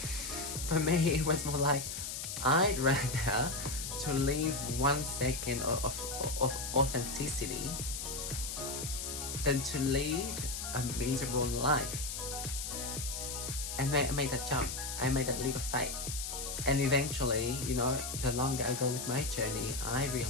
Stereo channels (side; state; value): left; noise; hiss, 5 dB below the sound